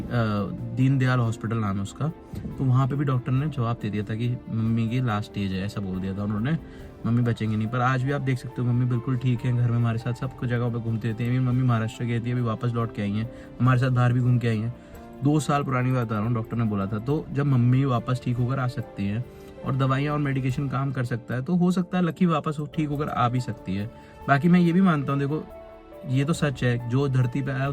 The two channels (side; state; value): both; identical; correlation 1.00